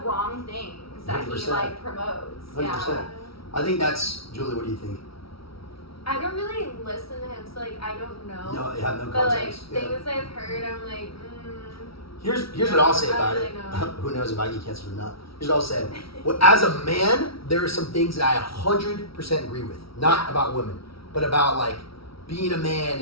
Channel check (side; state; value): right; late; 0.75 ms